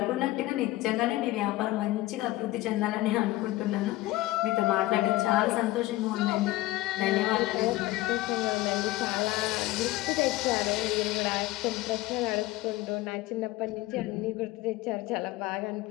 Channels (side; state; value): right; quieter; 17.9 dB